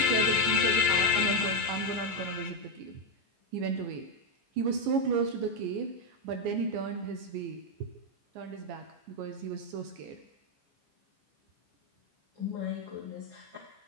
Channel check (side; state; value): left; late; 14 ms